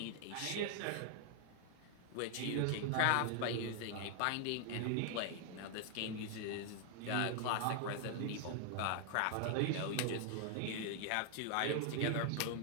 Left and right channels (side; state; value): both; different; correlation 0.00